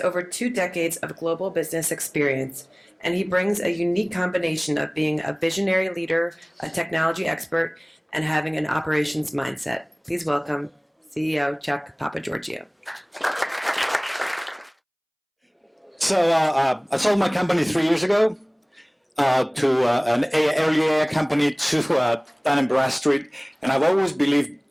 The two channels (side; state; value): both; identical; correlation 1.00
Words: 2 decades of global business experience, and he brings a unique combination of being a visionary leader, a technology expert, and having an operations mindset. Please welcome CEO Chuck Papageorgiou. So I sold my company 3 years ago to an early AI company to Dun & Bradstreet, and I've always believed